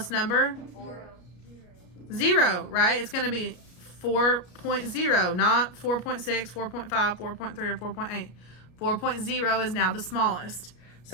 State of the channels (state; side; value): late; right; 34 ms